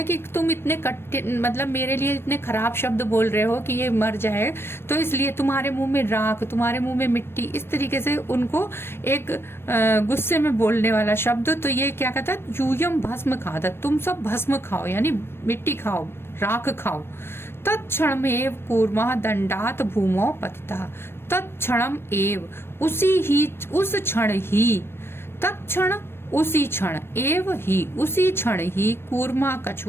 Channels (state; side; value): late; right; 0.12 ms